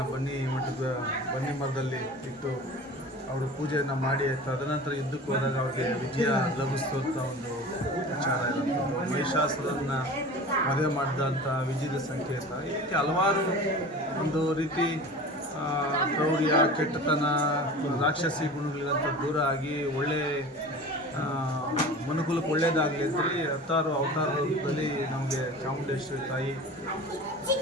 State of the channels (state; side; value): normal; both; correlation 0.37